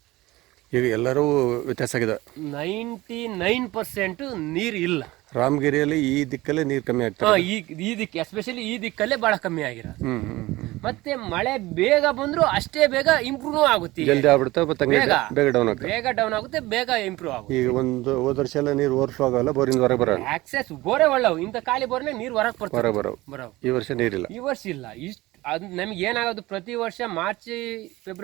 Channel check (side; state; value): left; quieter; 19.2 dB